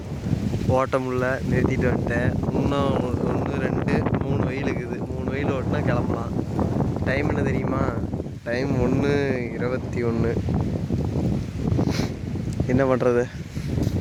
ஓட்ட முடியல, நிறுத்திட்டு வந்துட்டேன். இன்னும் 1 2 3 வெயில் இருக்குது. 3 வெயில் ஓட்டினா கிளம்பலாம். டைம் என்ன தெரியுமா? டைம் 1:21. என்ன பண்ணுறது?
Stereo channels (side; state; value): both; identical; correlation 1.00